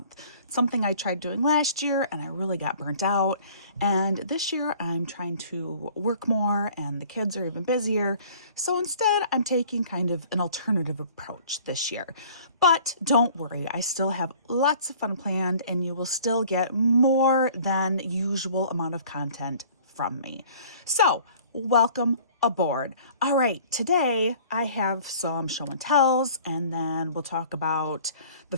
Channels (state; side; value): inverted; both; correlation -0.51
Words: It's something I tried doing last year and I really got burnt out. And this year I'm trying to work more and the kids are even busier. So instead I'm taking kind of an alternative approach this year. But don't worry, I still have lots of fun planned and you will still get more than usual amount of content from me. So welcome aboard. All right, today I have some show and tells and then we'll talk about the